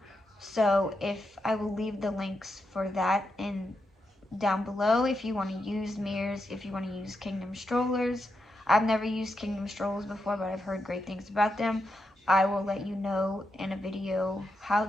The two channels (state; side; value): normal; both; correlation 0.85